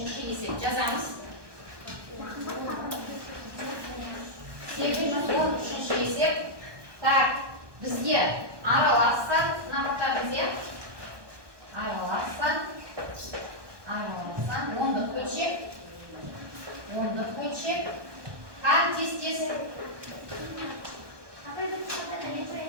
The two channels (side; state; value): left; late; 1.2 ms